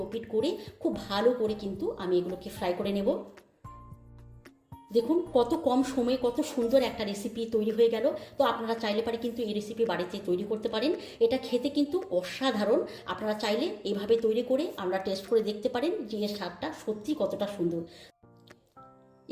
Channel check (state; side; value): identical; both; correlation 1.00